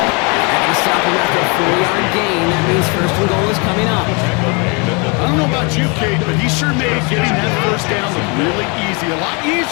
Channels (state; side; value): quieter; right; 32.0 dB